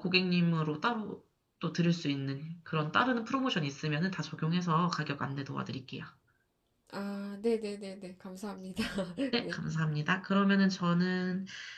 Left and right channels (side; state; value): both; identical; correlation 1.00